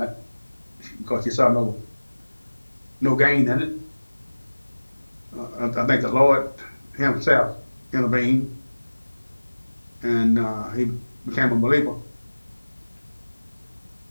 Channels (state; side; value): inverted; both; correlation -1.00